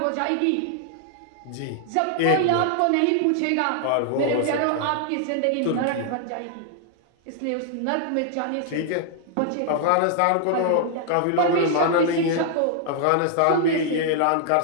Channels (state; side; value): different; both; correlation -0.01